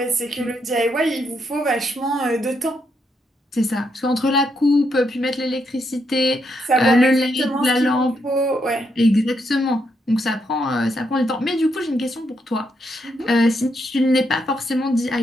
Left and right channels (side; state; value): both; normal; correlation 0.79